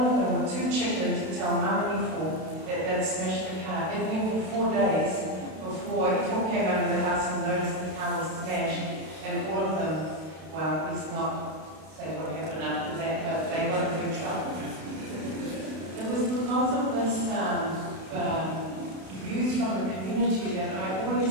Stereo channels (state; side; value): late; left; 32 ms